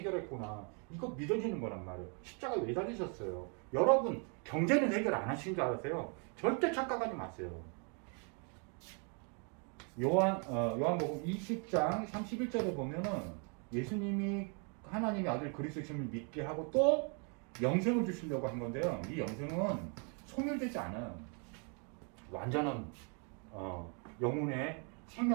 이거 믿어지는 거란 말이에요. 십자가에 왜 달리셨어요? 여러분 경제는 해결 안 하신 줄 아세요? 절대 착각하지 마세요. 요한복음 20장 31절에 보면은 예수님이 하나님의 아들 그리스도심을 믿게 하고 또 영생을 주시려고 한 건데요. 이 영생은 소멸되지 않아요. 완전한 영혼의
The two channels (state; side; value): quieter; left; 38.0 dB